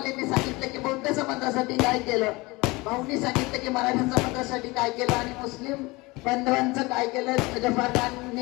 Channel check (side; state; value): right; quieter; 23.5 dB